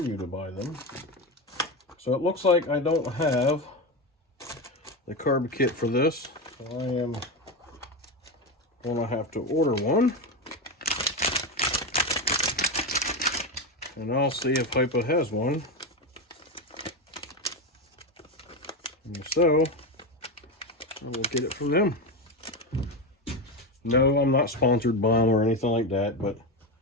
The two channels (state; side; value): normal; both; correlation 0.16